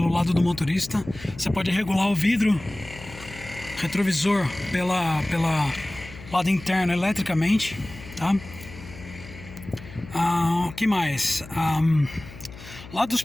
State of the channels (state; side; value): noise; left; hum, 16 dB below the sound